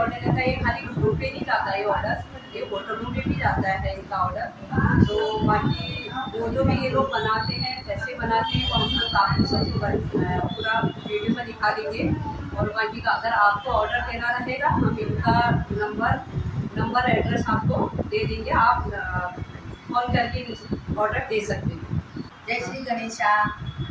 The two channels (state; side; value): identical; both; correlation 1.00